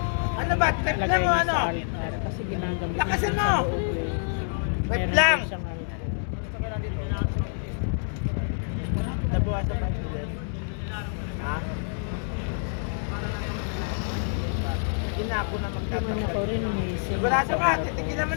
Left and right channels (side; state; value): right; silent; digital silence